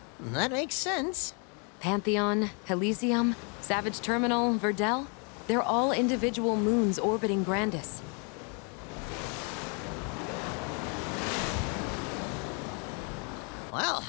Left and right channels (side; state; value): right; quieter; 37.0 dB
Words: That makes sense. Pantheon, Elysium, Savage Terminal, Verdel, they're all individual moons orbiting Grandis. Well,